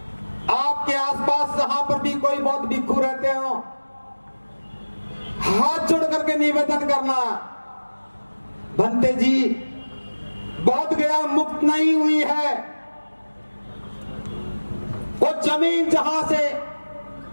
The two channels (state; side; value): inverted; both; correlation -1.00